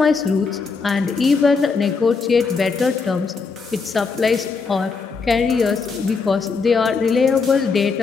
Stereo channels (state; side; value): quieter; right; 4.8 dB